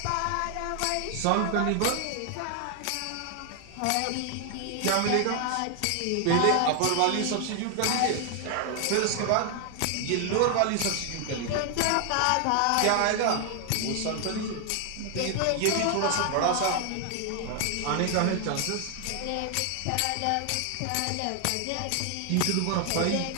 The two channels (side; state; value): both; different; correlation 0.00